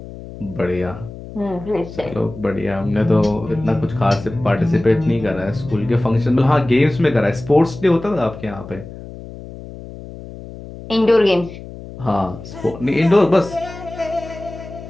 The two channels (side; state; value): left; noise; hum, 14 dB below the sound